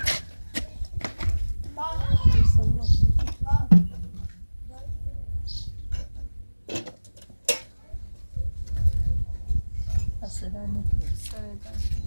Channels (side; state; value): both; inverted; correlation -1.00